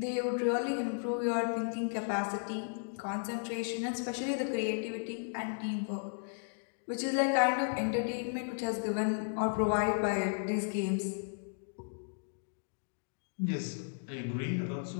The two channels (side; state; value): right; silent; digital silence